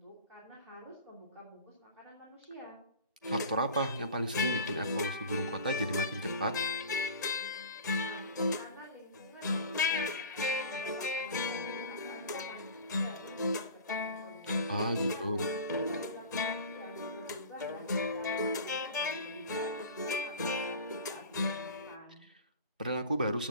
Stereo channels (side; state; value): both; inverted; correlation -0.37